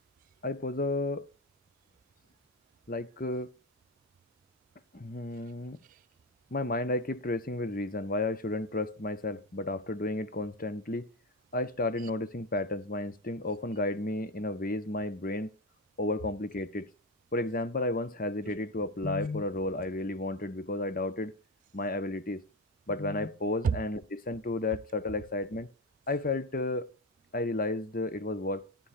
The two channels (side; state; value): both; normal; correlation 0.16